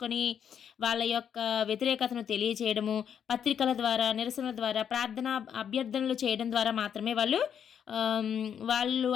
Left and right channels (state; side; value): quieter; right; 8.3 dB